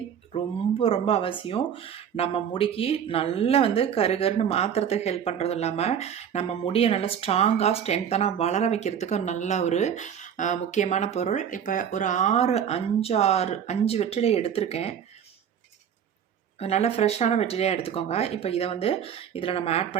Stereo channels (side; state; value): left; quieter; 8.5 dB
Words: ரொம்ப ரொம்ப அவசியம். நம்ம முடிக்கு நல்லா வந்து கருன்னு மாற்றுறதுக்கு ஹெல்ப் பண்ணுறதும் இல்லாமல் நம்ம முடியை நல்லா ஸ்ட்ராங்காக ஸ்ட்ரென்த்தனாக வளர வைக்கிறதுக்கு நல்ல ஒரு முக்கியமான பொருள். இப்போ ஒரு 5 வெற்றிலை எடுத்திருக்கேன். நல்ல ஃப்ரெஷ்ஷான வெற்றிலையாக எடுத்துக்கோங்க. இப்போ இதை வந்து இதில் நம்ம ஆட்